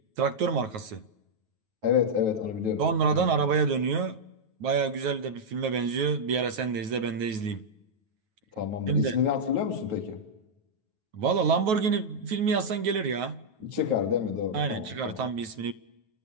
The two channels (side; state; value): left; late; 9.3 ms